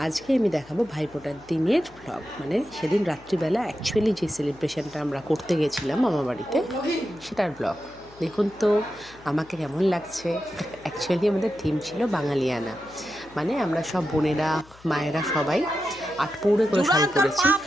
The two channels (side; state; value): left; noise; hum, 24 dB below the sound